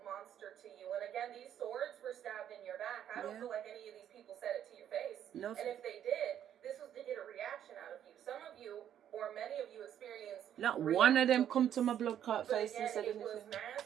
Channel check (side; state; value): left; quieter; 10.1 dB